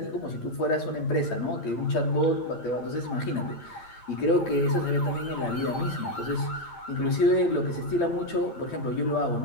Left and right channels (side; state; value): right; late; 8.7 ms